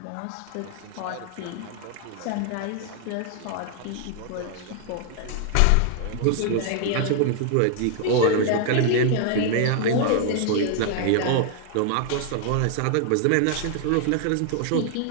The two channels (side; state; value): both; different; correlation 0.00